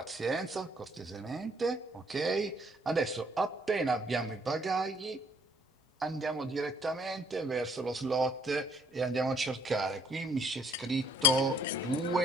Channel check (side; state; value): both; normal; correlation 0.63